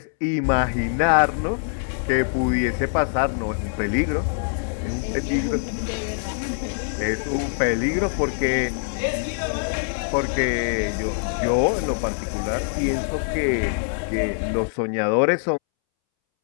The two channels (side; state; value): right; silent; 63 dB below the other